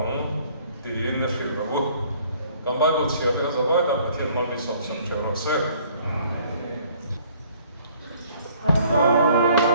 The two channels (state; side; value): inverted; both; correlation -0.58